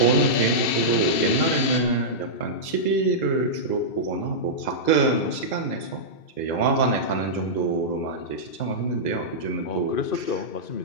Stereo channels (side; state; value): right; late; 2.7 ms